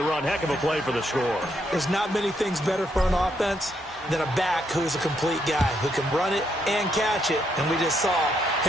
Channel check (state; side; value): normal; both; correlation 0.76